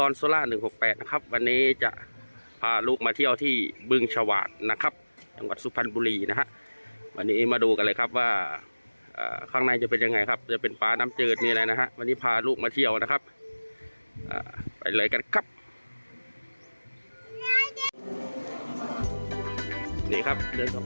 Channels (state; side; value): inverted; both; correlation -1.00